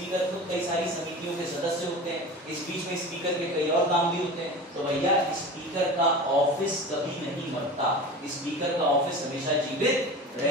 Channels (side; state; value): both; normal; correlation 0.33